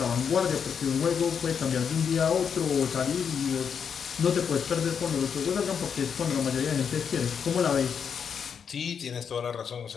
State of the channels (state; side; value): quieter; right; 7.0 dB